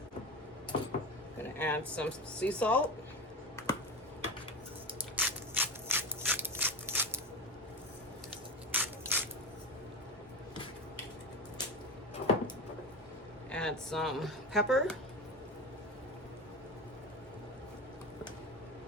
Gonna add some sea salt. Add some pepper,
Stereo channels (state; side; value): normal; both; correlation 0.24